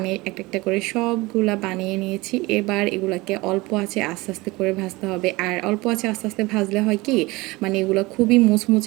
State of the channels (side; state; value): left; quieter; 22.2 dB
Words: একটা একটা করে সবগুলা বানিয়ে নিয়েছি। এবার এগুলাকে অল্প আছে আস্তে আস্তে করে ভাজতে হবে। আর অল্প আছে আস্তে আস্তে ভাজলে হয় কি, মানে এগুলো খুবই